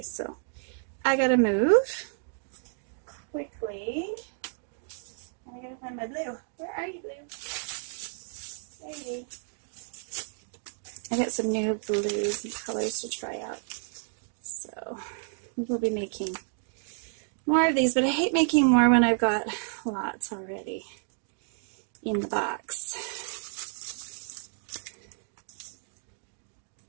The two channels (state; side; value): silent; left; 57 dB below the other